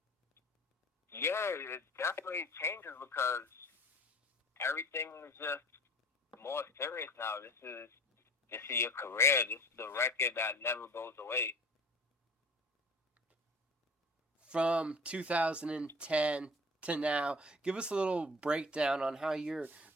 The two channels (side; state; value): both; normal; correlation 0.44